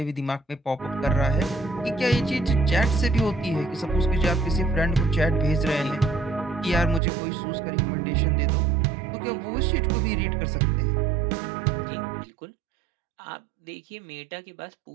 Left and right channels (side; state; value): left; drops out; at 7.0 s